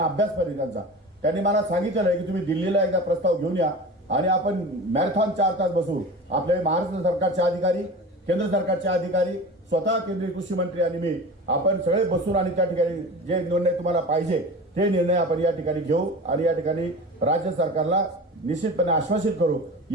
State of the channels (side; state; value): both; normal; correlation 0.33